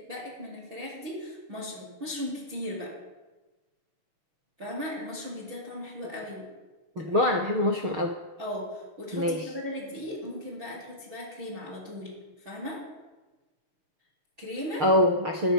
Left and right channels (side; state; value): left; late; 6.5 ms